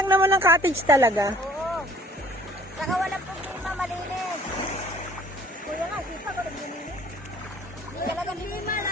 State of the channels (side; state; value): both; normal; correlation 0.55